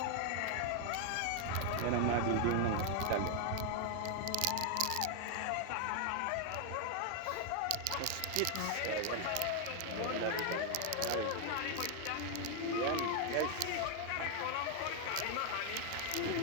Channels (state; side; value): different; both; correlation 0.00